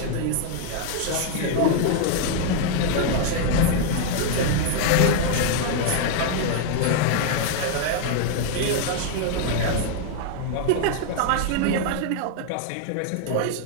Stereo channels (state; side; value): different; both; correlation 0.00